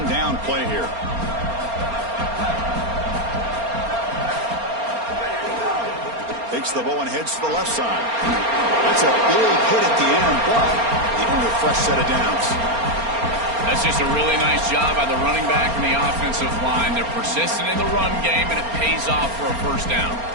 down play here. Takes the ball and heads to the left side. That's a big hit at the end, but they don't have a fresh set of downs. That's just a really nice job by the running back and the offensive line. They're persistent in the run game, and it pays off for a first down.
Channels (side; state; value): left; late; 4.3 ms